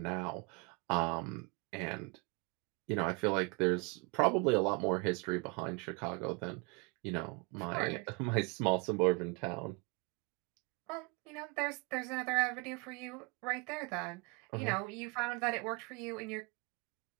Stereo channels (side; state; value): left; quieter; 30.8 dB